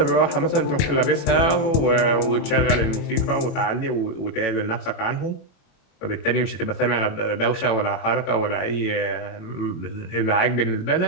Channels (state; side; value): late; right; 21 ms